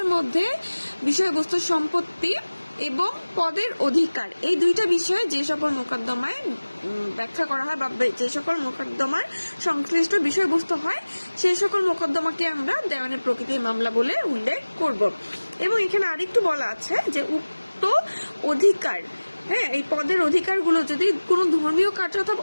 মধ্যে বিষয়বস্তু সম্পত্তি এবং পদের অধিকার এই দুইটা বিষয়ে যে সকল মোকদ্দমায় ব্যাখ্যা করা হয় বা যে সকল মোকদ্দমার সংশ্লিষ্ট বিষয়বস্তু হয় সেই সকল মোকদ্দমাকে আমরা দেওয়ানি প্রকৃতির মামলা বলে উল্লেখ করব। এবং এখানে আরেকটু বলা আছে যে উক্ত অধিকার, এই পদের অধিকারগুলো যদি কোনো ধর্মীয় কার্য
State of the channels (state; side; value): inverted; both; correlation -1.00